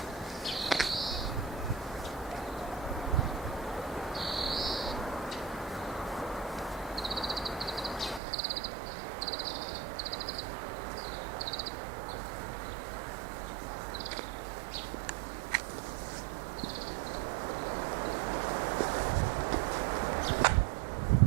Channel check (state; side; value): drops out; left; at 8.2 s